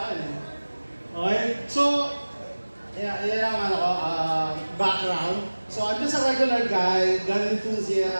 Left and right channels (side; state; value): both; inverted; correlation -1.00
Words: Okay? So, yan ang background. So, I'm just a regular guy, gun